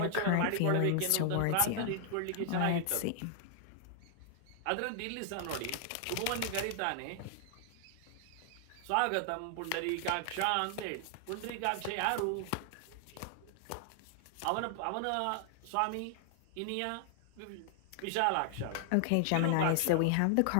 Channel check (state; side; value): different; both; correlation 0.00